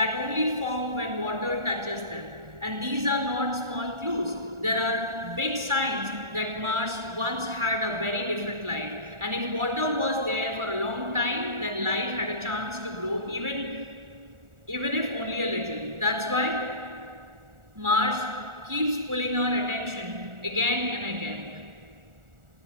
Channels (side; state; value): left; late; 1.4 ms